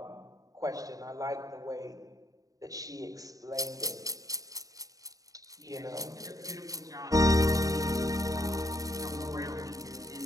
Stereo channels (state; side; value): late; left; 0.17 ms